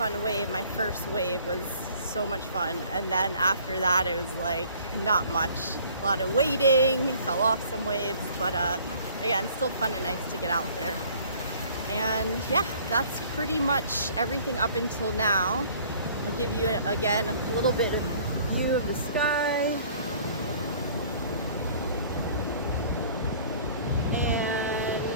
wave. My first wave was so much fun, and then after that it was like not much. A lot of waiting, fell off some waves, but again, still fun and nice to get out there. And yeah, that's pretty much everything up until now. I'll give you again a little bit of view of the sky. And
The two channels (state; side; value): inverted; both; correlation -0.54